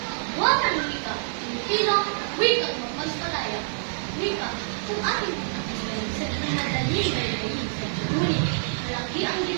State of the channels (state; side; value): silent; left; digital silence